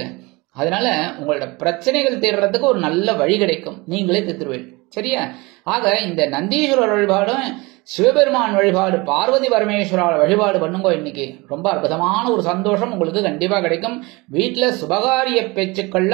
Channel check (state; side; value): quieter; left; 24.3 dB